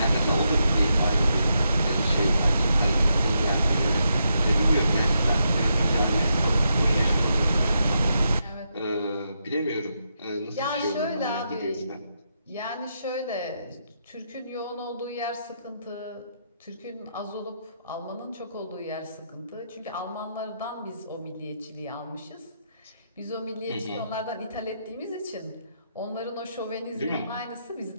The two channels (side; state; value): both; inverted; correlation -0.82